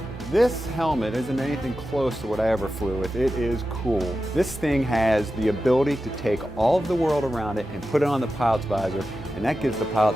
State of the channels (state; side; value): normal; both; correlation 0.92